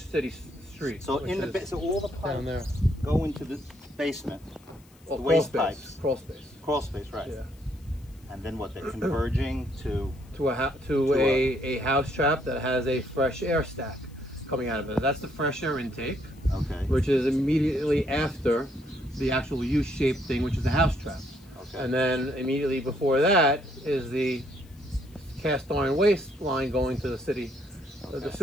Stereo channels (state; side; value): noise; left; hiss, 29 dB below the sound